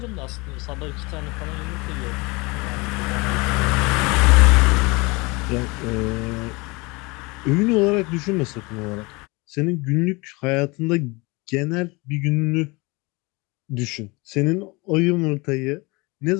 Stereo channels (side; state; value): right; quieter; 25.8 dB